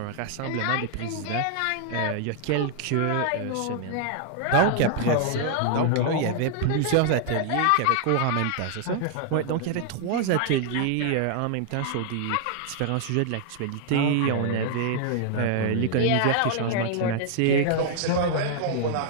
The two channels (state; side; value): different; both; correlation 0.00